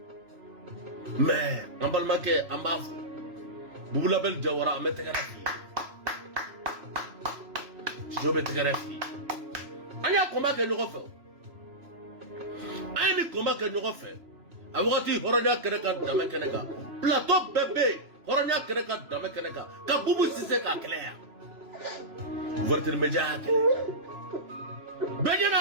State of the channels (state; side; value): late; left; 3.0 ms